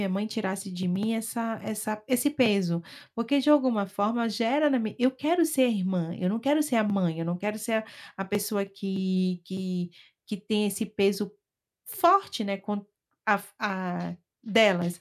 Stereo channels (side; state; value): both; identical; correlation 1.00